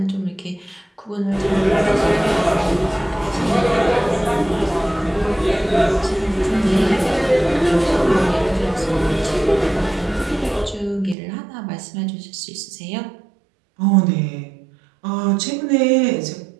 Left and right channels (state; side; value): drops out; left; at 11.2 s